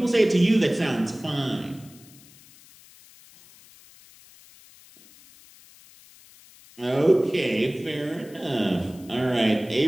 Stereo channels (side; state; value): left; noise; hiss, 24 dB below the sound